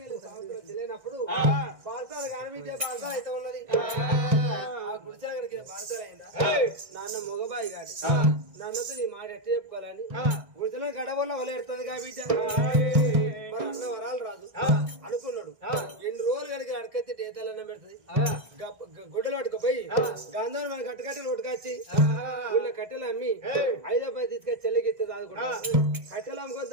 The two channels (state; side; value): late; left; 1.6 ms